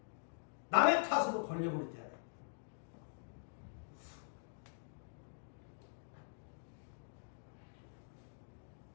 남의 탓으로 돌려버리잖아요.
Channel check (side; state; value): right; silent; digital silence